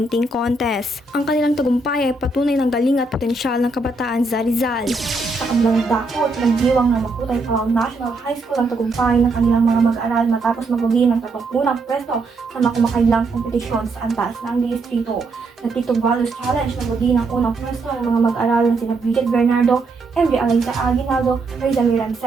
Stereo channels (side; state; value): left; quieter; 3.3 dB